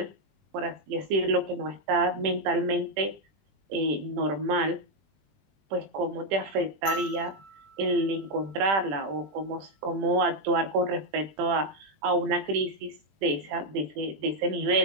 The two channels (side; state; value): left; late; 20 ms